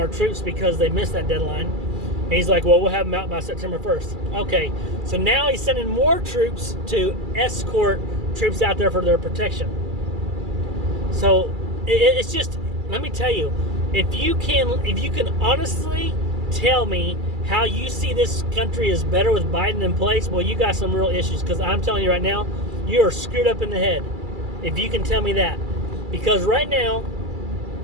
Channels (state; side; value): late; left; 2.3 ms